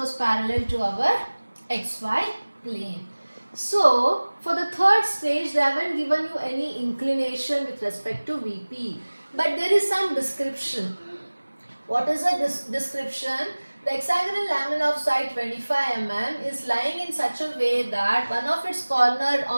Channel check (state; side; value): inverted; both; correlation -1.00